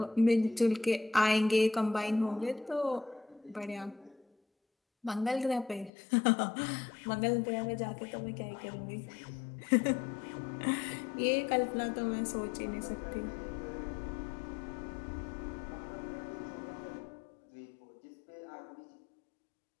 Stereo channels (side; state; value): right; drops out; at 5.9 s